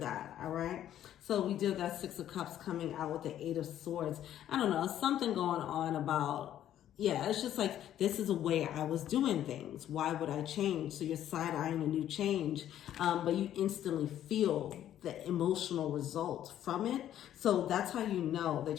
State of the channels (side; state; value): right; quieter; 11.4 dB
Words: All right. So we did that 6 of Cups coming out with the 8 of Swords. I don't know, something going on about, yeah, it's just like, this is a way I was doing things. Why would I change? So you're side-eyeing a new change, but you instantly feel the emotional result from it. So that's how you know